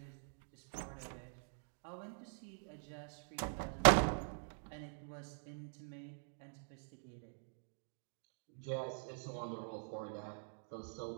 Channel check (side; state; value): left; silent; digital silence